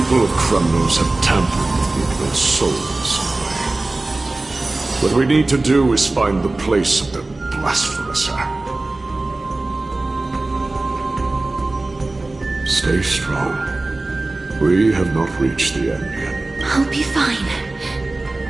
of Chrysos have tampered with Nico's soul in some way. What we need to do is find the place of their blasphemous act. Stay strong. We have not reached the end yet. I'll be fine.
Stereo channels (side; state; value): left; quieter; 3.0 dB